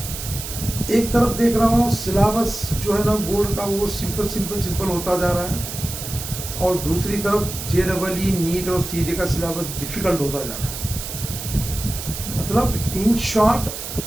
एक तरफ देख रहा हूँ सिलेबस जो है ना बोर्ड का वो सिंपल होता जा रहा है, और दूसरी तरफ जेडब्ल्यू, नीट और सीईटी का सिलेबस डिफ़िकल्ट होता जा रहा है। मतलब इन शॉर्ट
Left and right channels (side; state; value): right; noise; hiss, 8 dB below the sound